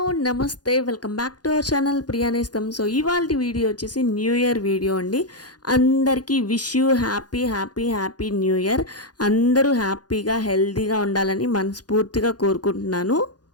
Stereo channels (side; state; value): right; late; 0.69 ms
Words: నమస్తే welcome back to our channel Priyanestham. So ఇవాళ video వచ్చేసి న్యూ ఇయర్ వీడియో అండి. అందరికీ wish you happy happy happy new year. అందరూ హ్యాపీగా హెల్తీగా ఉండాలని మనస్ఫూర్తిగా కోరుకుంటున్నాను.